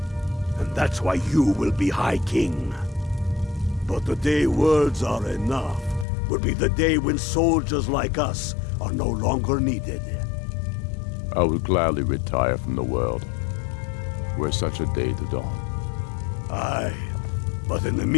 And that's why you will be High King. But the day words are enough will be the day when soldiers like us are no longer needed. I would gladly retire from the world, were such a day to dawn. Aye, but in the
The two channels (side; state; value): right; drops out; at 6.1 s